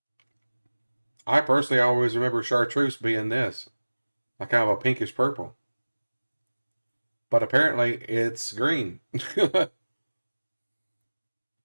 I personally always remember chartreuse being this, like kind of a pinkish purple. But apparently it's green.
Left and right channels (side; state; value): both; inverted; correlation -1.00